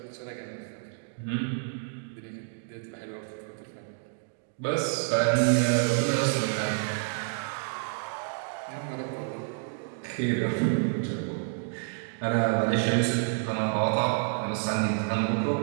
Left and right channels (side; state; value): left; silent; digital silence